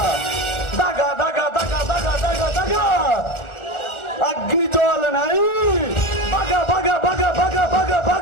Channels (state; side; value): late; right; 1.3 ms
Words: దగ దగ దగ దగ దగ దగ అగ్నిజ్వాలనై బగ బగ బగ బగ బగ